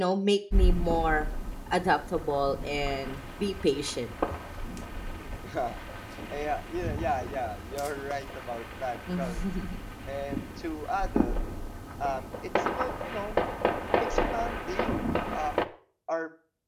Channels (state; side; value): identical; both; correlation 1.00